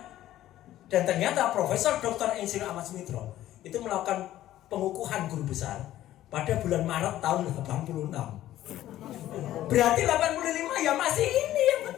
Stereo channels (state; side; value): quieter; right; 13.6 dB